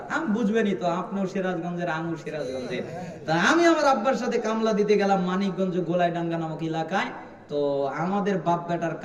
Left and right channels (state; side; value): identical; both; correlation 1.00